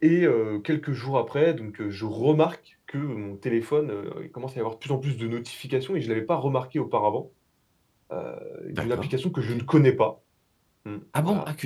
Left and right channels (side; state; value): both; identical; correlation 1.00